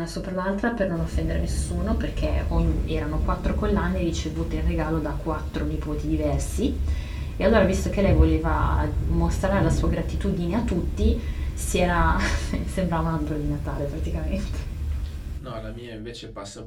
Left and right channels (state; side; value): identical; both; correlation 1.00